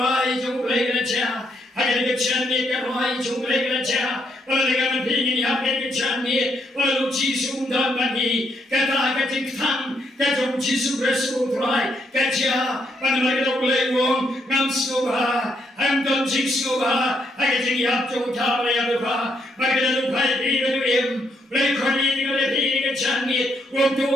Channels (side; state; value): both; normal; correlation 0.75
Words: to play in a chair. I can get a right to play in a chair. Well, I got a pig in the up in the chair. Well, Jisu done money. Get a getting tongue. Get a Jisu wrestle try. Get ya. But I don't play wrong. I'm so hard. I'm done Jisu. I get the up to Tava. I get a pipe even to him. Play Corny, a channy. Won't do